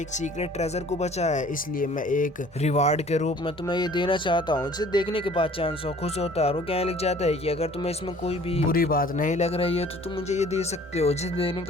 एक सीक्रेट ट्रेजर को बचाया है, इसलिए मैं एक रिवार्ड के रूप में तुम्हें ये देना चाहता हूँ। इसे देखने के बाद चैन साओ खुश होता है और वो कहने लग जाता है कि अगर तुम्हें इसमें कोई भी बुरी बात नहीं लग रही है तो तुम मुझे ये दे सकते हो। जिसे देने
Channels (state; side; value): normal; both; correlation 0.51